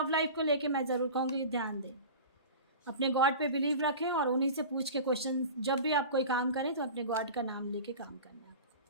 लाइफ को लेके मैं ज़रूर कहूँगी ध्यान दें, अपने गॉड पे बिलीव रखें और उन्हीं से पूछ के क्वेश्चन, जब भी आप कोई काम करें तो अपने गॉड का नाम लेके काम करना है,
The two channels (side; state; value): both; inverted; correlation -0.34